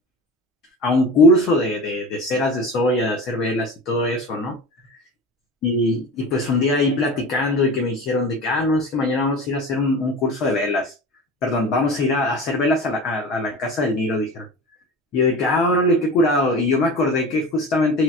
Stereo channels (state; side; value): normal; both; correlation 0.33